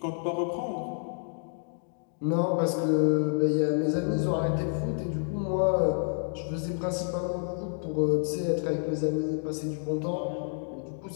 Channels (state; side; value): silent; right; 58 dB below the other